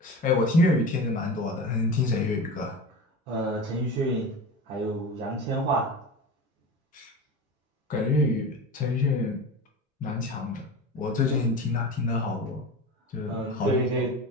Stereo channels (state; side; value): normal; both; correlation 0.30